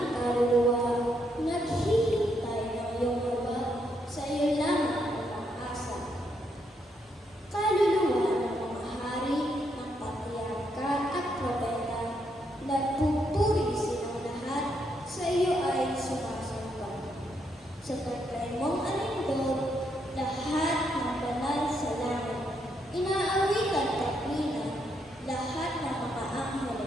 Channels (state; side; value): normal; both; correlation 0.77